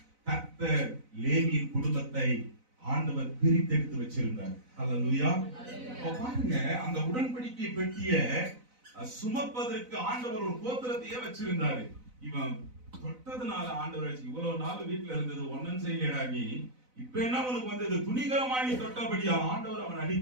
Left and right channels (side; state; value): left; late; 4.0 ms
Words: கர்த்தர் லேவியின் குடும்பத்தை ஆண்டவர் பிரித்தெடுத்து வச்சிருந்தார். அல்லேலூயா. பாருங்க, அந்த உடன்படிக்கை பெட்டிய சுமப்பதற்கு ஆண்டவர் ஒரு கோத்திரத்தையே வச்சிருந்தாரு. இவன் தொட்டதுனால ஆண்டவர் இவ்வளவு நாள் வீட்டுல இருந்தது ஒன்னும் செய்யடா நீ, இப்ப என்ன உனக்கு வந்தது, துணிகரமாய் நீ தொட்டபடியா ஆண்டவர் அவன்